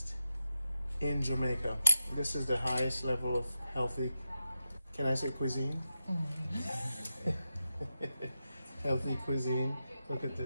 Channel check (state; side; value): inverted; both; correlation -0.90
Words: in Jamaica. This is the highest level of healthy, can I say cuisine? Healthy cuisine. Look at